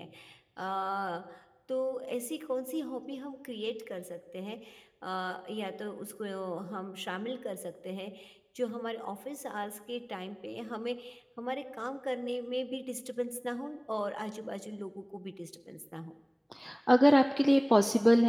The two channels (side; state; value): both; identical; correlation 1.00